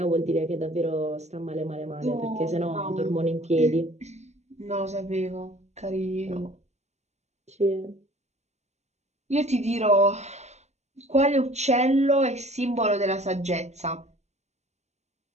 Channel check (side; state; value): left; late; 0.33 ms